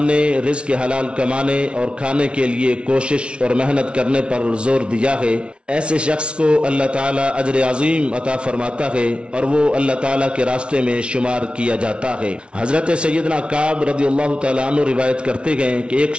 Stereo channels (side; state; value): left; late; 0.058 ms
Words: نے رزق حلال کمانے اور کھانے کے لیے کوشش اور محنت کرنے پر زور دیا ہے۔ ایسے شخص کو اللہ تعالیٰ اجر عظیم عطا فرماتا ہے اور وہ اللہ تعالیٰ کے راستے میں شمار کیا جاتا ہے۔ حضرت سیدنا کعب رضی اللہ تعالیٰ عنہ روایت کرتے ہیں کہ ایک